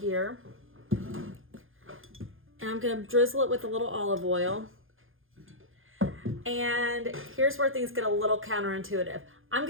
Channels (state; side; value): late; left; 0.59 ms